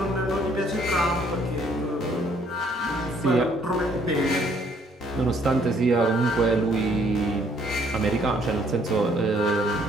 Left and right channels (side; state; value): both; normal; correlation 0.64